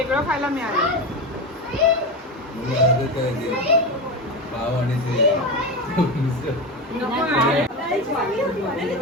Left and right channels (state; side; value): normal; both; correlation 0.20